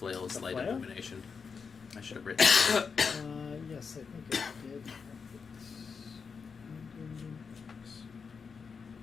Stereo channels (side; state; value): right; quieter; 5.6 dB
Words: The light flail? illumination? I should have written it. Yes, I think it did.